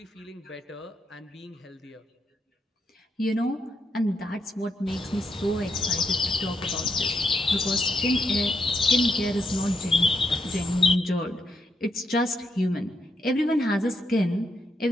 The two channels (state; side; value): normal; both; correlation 0.80